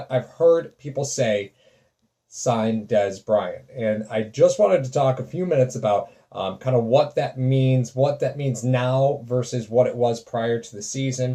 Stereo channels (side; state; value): both; identical; correlation 1.00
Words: I've heard people say, sign Dez Bryant. And I just wanted to talk a few minutes about kind of what that means now versus what it was prior to the